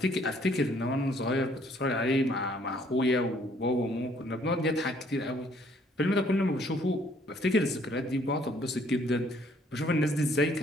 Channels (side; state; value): both; normal; correlation 0.63